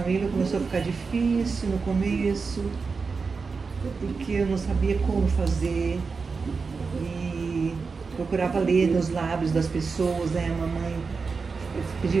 família começou a ficar difícil no começo, porque eu não sabia como fazer. E procurava ler nos lábios das pessoas, né? A mamãe, eu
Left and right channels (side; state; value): left; quieter; 4.8 dB